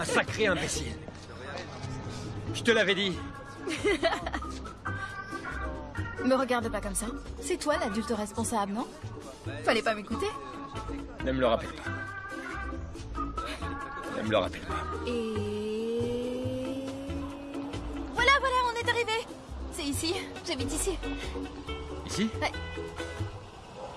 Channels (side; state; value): both; identical; correlation 1.00